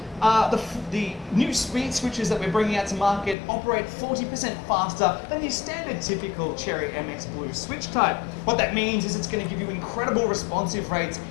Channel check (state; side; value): drops out; right; at 3.4 s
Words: the new speed switches that we're bringing out to market operate 40% faster than your standard typical Cherry MX Blue switch type. What that means is it's going to give you incredible responsive rates